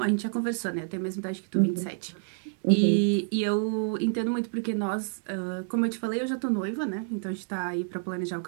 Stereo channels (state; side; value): silent; left; digital silence